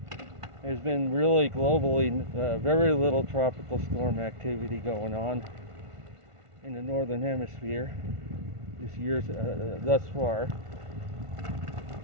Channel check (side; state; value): left; late; 1.5 ms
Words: There's been really globally very little tropical storm activity going on in the northern hemisphere this year thus far.